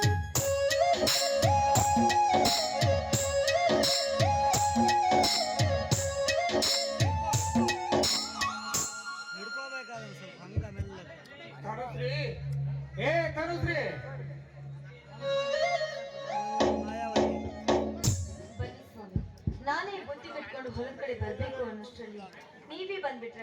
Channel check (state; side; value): identical; both; correlation 1.00